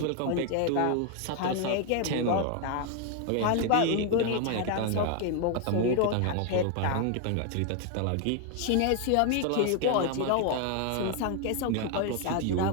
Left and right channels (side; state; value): both; different; correlation 0.01